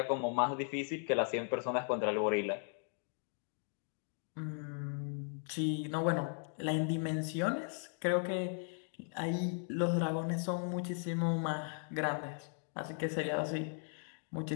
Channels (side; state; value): right; silent; 53 dB below the other